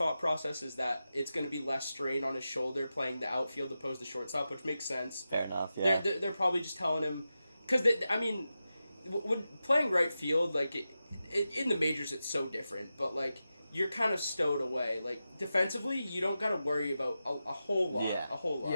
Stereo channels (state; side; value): inverted; both; correlation -0.91